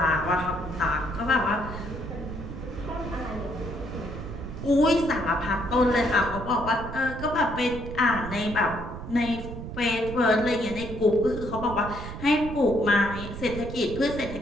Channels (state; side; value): noise; right; rumble, 9 dB below the sound